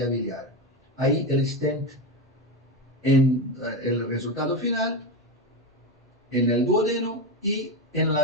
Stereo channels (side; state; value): both; normal; correlation 0.16